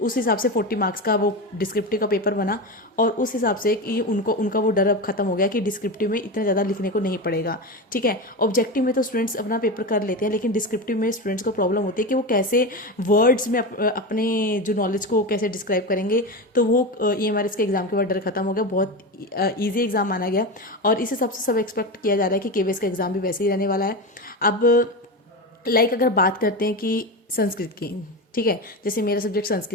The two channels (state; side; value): normal; both; correlation 0.20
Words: हिसाब से 40 मार्क्स का वो डिस्क्रिप्टिव का पेपर बना। और उस हिसाब से कि उनका वो डर अब खत्म हो गया कि डिस्क्रिप्टिव में इतना ज़्यादा लिखने को नहीं पड़ेगा, ठीक है। ऑब्जेक्टिव में तो स्टूडेंट्स अपना पेपर कर लेते हैं, लेकिन डिस्क्रिप्टिव में स्टूडेंट्स को प्रॉब्लम होती है कि वो कैसे वर्ड्स में अपने जो नॉलेज को कैसे डिस्क्राइब करेंगे। तो वो ईएमआरएस के एग्जाम के बाद डर खत्म हो गया, बहुत ईजी एग्जाम माना गया। और इस हिसाब से सब एक्सपेक्ट किया जा रहा है कि केवीएस का एग्जाम भी वैसे ही रहने वाला है। अब लाइक अगर बात करते हैं कि संस्कृत की, ठीक है, जैसे मेरा सब्जेक्ट